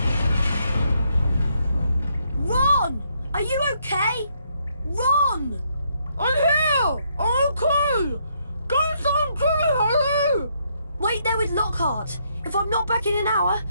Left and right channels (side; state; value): both; inverted; correlation -0.74